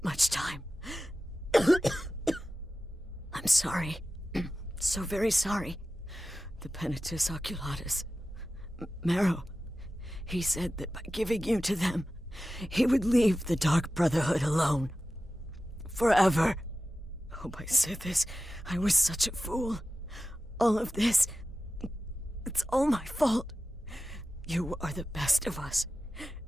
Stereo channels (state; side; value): normal; both; correlation 0.94